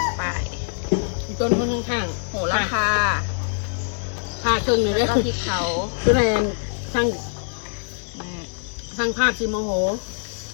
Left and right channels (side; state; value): right; silent; digital silence